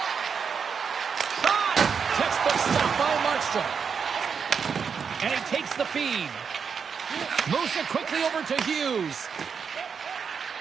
Shot! Textbook stop by Markstrom. And he takes the feed. Moves it quickly over to Hughes.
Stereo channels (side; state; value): left; quieter; 6.3 dB